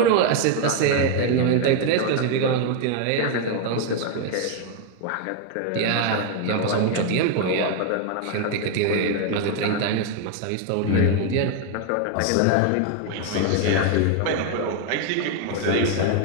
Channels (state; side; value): different; both; correlation 0.01